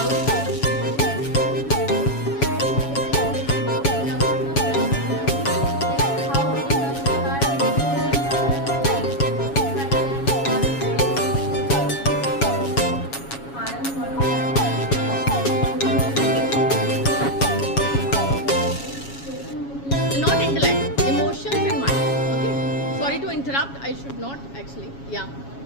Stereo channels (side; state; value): right; late; 7.2 ms